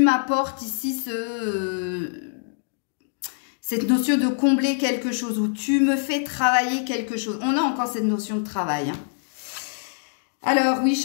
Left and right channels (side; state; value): right; silent; digital silence